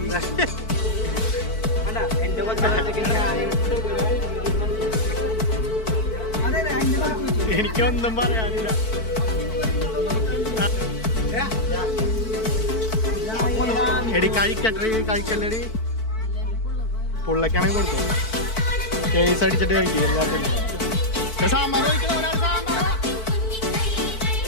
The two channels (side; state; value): right; late; 4.5 ms